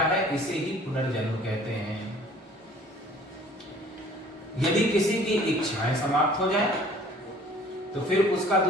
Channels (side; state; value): both; normal; correlation 0.52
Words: इसे ही पुनर्जन्म कहते हैं। यदि किसी की इच्छाएं समाप्त हो जाए तो फिर उसका